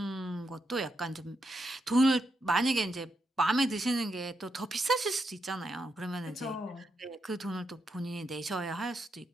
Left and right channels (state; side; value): normal; both; correlation 0.83